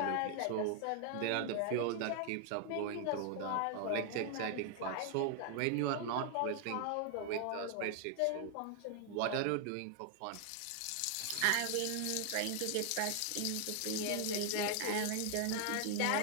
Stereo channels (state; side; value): different; both; correlation 0.00